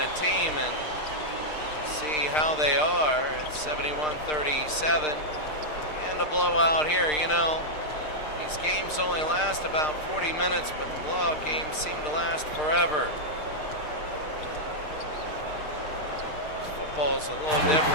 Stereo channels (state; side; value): late; right; 6.6 ms